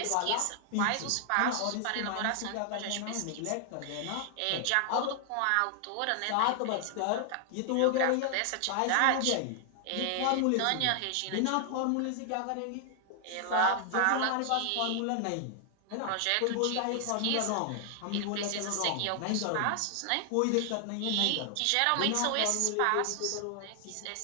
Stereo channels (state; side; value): different; both; correlation 0.00